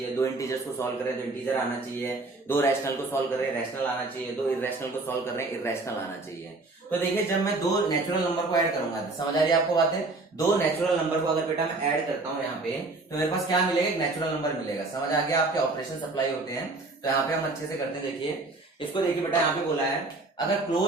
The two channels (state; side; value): quieter; left; 3.3 dB